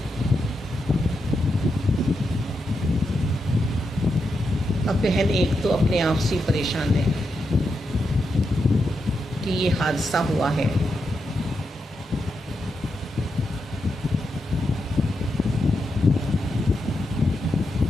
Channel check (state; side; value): normal; both; correlation 0.85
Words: अब बहन एक तो अपने आप से परेशान है कि ये हादसा हुआ है,